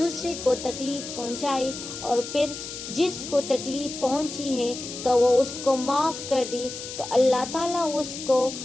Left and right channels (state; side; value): noise; left; hiss, 9 dB below the sound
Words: کو تکلیف پہنچائے اور پھر جس کو تکلیف پہنچی ہے تو وہ اس کو معاف کر دے تو اللہ تعالیٰ اس کو